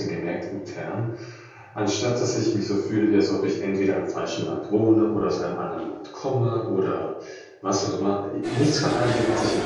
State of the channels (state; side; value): identical; both; correlation 1.00